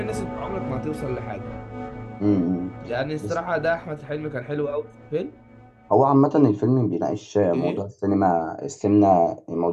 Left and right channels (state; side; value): identical; both; correlation 1.00